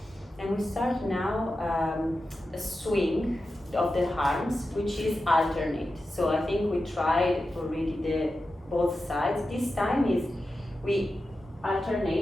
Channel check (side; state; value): both; normal; correlation 0.92